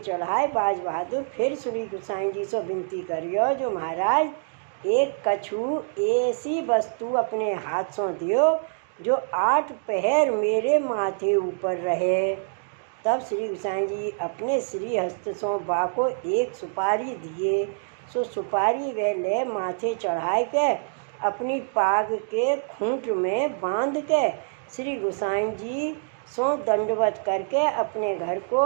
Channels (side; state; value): left; silent; digital silence